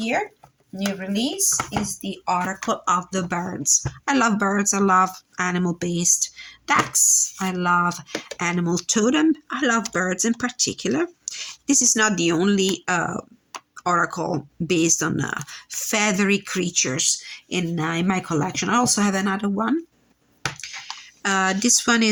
New release is the Oracle of the Birds. I love birds. I love animal-based decks. I love animal totem. I love birds in particular. This is not the only oracle based on feathery creatures in my collection. I also have another one. This one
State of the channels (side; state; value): both; identical; correlation 1.00